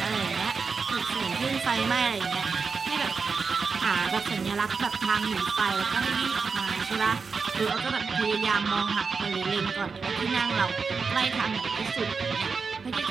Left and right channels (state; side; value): quieter; left; 5.0 dB